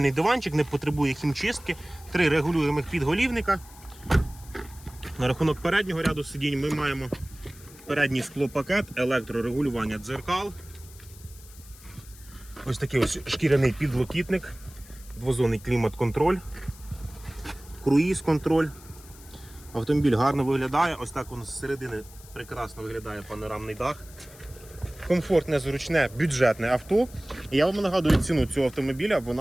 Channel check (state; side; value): noise; left; hiss, 21 dB below the sound